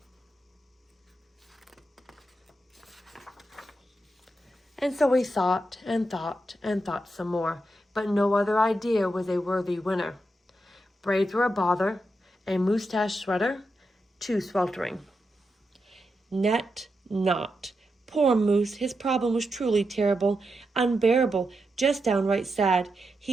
And so he thought and thought and thought some more, but no other idea was a worthy winner. Braids were a bother, a moosetache sweater, too sweltering. Net not. Poor Moose, his problem was truly terrible, unbearable, just downright sad.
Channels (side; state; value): both; normal; correlation 0.86